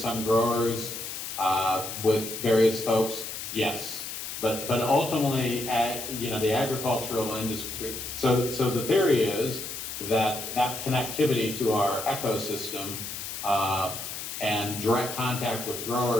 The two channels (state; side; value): noise; left; hiss, 7 dB below the sound